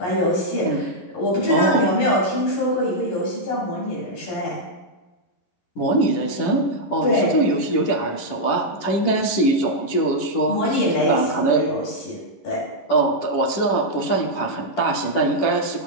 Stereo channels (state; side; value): late; right; 10 ms